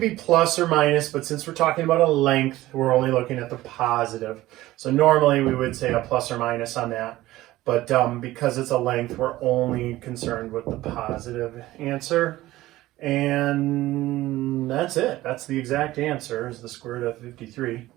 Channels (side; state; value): left; quieter; 16.6 dB